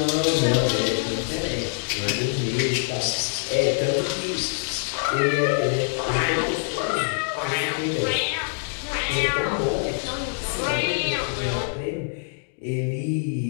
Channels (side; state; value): right; silent; digital silence